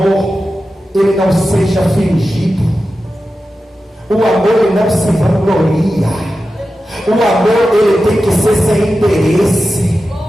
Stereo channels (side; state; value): both; normal; correlation 0.92